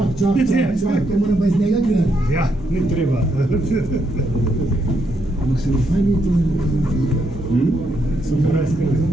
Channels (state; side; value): normal; both; correlation 0.77